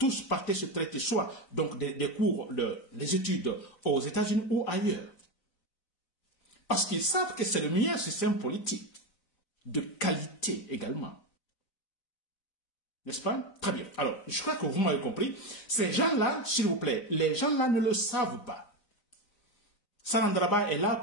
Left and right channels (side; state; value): right; late; 4.0 ms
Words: partaient se traiter soit donc des cours, des études aux États-Unis ou ailleurs. Parce qu'ils savent que c'est le meilleur système politique, de qualité également. N'est-ce pas? Très bien. Alors, je crois que vous m'avez compris. Ces gens-là, s'il vous plaît, les gens-là ne le savent pas. Salandraba est là